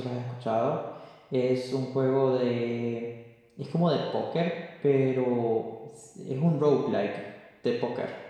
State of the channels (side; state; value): both; identical; correlation 1.00